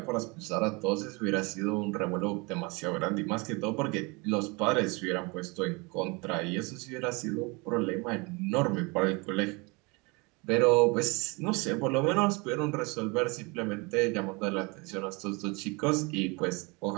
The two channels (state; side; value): quieter; left; 27.6 dB